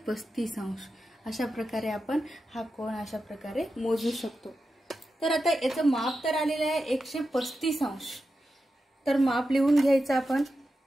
अंश. अशा प्रकारे आपण हा कोन अशा प्रकारे मोजू शकतो. तर आता याचं माप तर आलेलं आहे 135 अंश. तर माप लिहून घ्यायचं आपण.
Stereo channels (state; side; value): normal; both; correlation 0.90